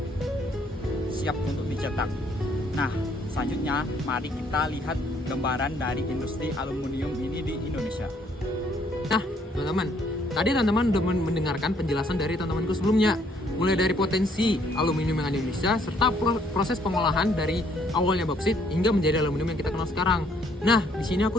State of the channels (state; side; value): normal; both; correlation 0.66